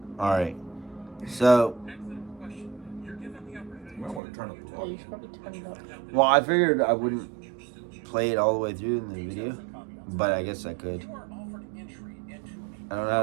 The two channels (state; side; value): drops out; left; at 4.2 s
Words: Alright. So. You might want to turn up the Yeah, you volume. should probably turn it up. Well, I figured I wouldn't play it all the way through in the video, but I guess I could. I don't know